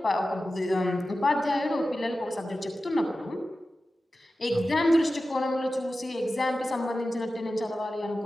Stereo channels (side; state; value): both; normal; correlation 0.94